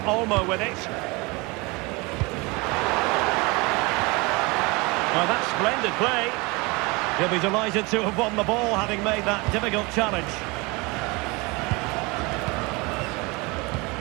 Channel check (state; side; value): quieter; left; 25.9 dB